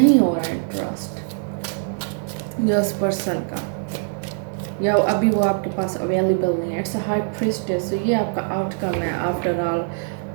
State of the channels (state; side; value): silent; left; digital silence